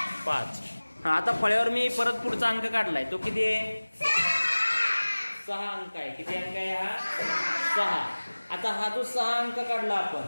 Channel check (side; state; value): both; inverted; correlation -1.00